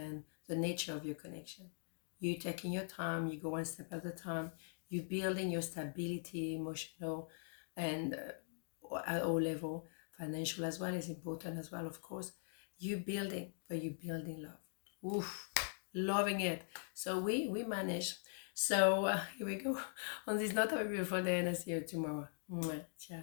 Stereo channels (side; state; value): right; silent; digital silence